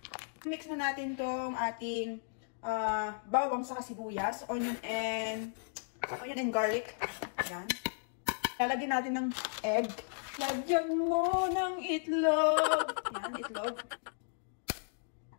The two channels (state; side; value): silent; right; digital silence